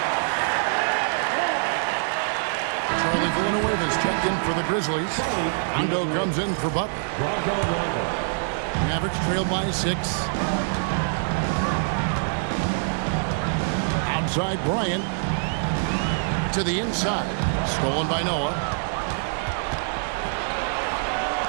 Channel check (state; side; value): silent; left; 62 dB below the other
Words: Villanueva's checked in for the Grizzlies. Rondo comes in for Butler. Mavericks trail by 6. Outside Bryant. To the inside. Stolen by Noah.